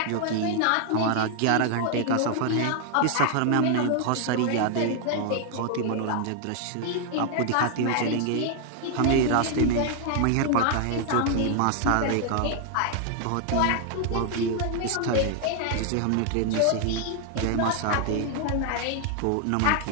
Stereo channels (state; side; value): different; both; correlation 0.00